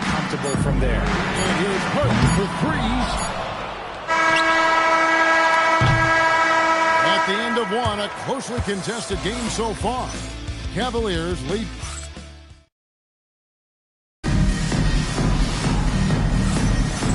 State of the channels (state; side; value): identical; both; correlation 1.00